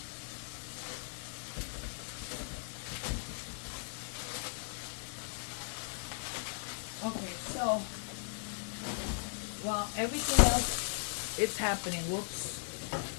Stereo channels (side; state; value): right; silent; 53 dB below the other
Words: Okay, so while everything else is happening, whoops,